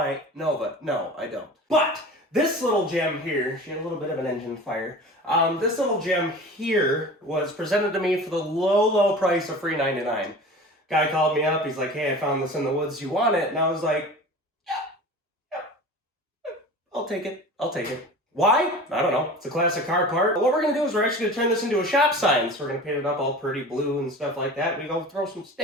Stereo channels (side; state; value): both; normal; correlation 0.37